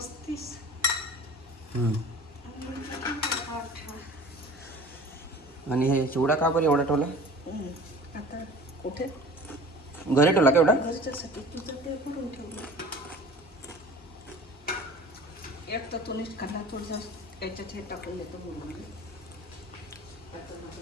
आणि हे चिवडा का बरं एवढा ठेवला? आता कुठे घरी ठेवला का एवढा? घरच्यासाठी तुझं ते करून ठेवलं. एक तर तुम्हीच खाल्ला थोडंसं याच्यात हे टाकून देतो बोलून.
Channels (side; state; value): both; normal; correlation 0.42